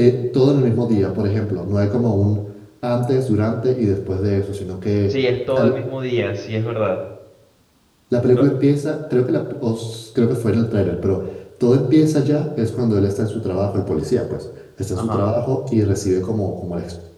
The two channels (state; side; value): identical; both; correlation 1.00